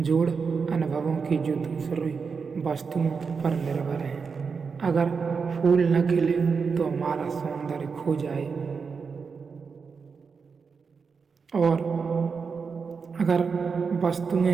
अनुभवों की जो दूसरी वस्तुओं पर निर्भर हैं। अगर फूल न खिले तो हमारा सौंदर्य खो जाए, और अगर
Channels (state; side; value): quieter; left; 5.4 dB